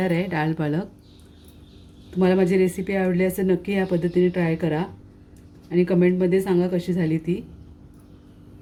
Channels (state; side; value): identical; both; correlation 1.00